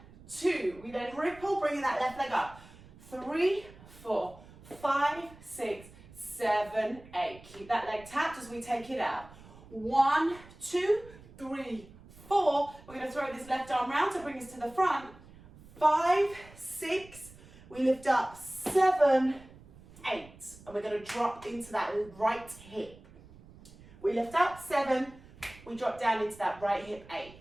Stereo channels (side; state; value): right; noise; rumble, 21 dB below the sound